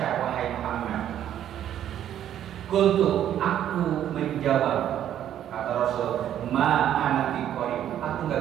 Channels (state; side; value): quieter; left; 10.8 dB